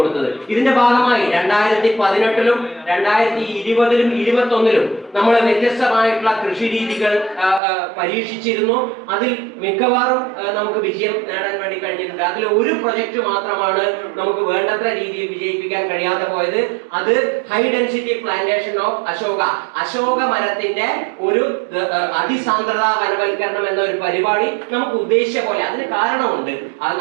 ഇതിന്റെ ഭാഗമായി 2018-ലും 2020-ലും 2021-ലും നമ്മൾ വ്യത്യസ്തമായിട്ടുള്ള കൃഷി രീതികൾ പരീക്ഷിച്ചിരുന്നു. അതിൽ മിക്കവാറും നമുക്ക് വിജയം നേടാൻ വേണ്ടി കഴിഞ്ഞിട്ടുണ്ട്. അതിൽ ഒരു പ്രൊജക്ട് മാത്രമാണ് നമുക്ക് വേണ്ടത്ര രീതിയിൽ വിജയിപ്പിക്കാൻ കഴിയാതെ പോയത്. അത് high density plantation of Ashoka മരത്തിന്റെ ഒരു അതിസാന്ദ്രതാ വനവൽക്കരണം എന്ന ഒരു പരിപാടി നമുക്ക് ഉദ്ദേശിച്ച പോലെ. അതിന് കാരണമുണ്ട്.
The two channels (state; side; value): drops out; left; at 7.6 s